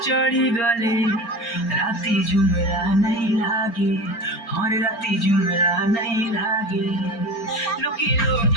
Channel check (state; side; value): late; right; 4.4 ms